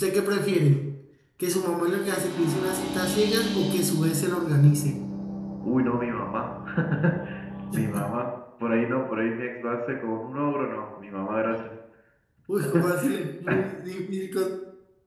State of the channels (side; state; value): both; identical; correlation 1.00